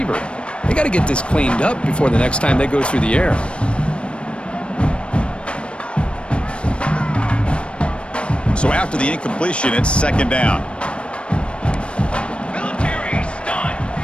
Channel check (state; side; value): late; right; 0.058 ms